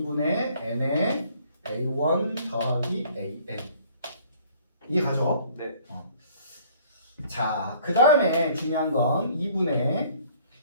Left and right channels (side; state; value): both; inverted; correlation -0.55